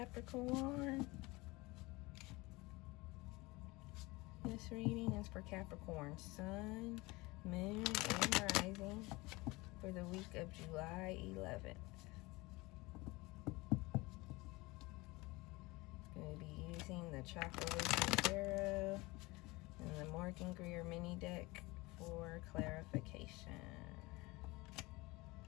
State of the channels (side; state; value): right; quieter; 22.8 dB